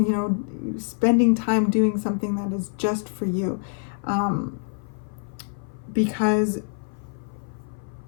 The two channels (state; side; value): silent; right; 55 dB below the other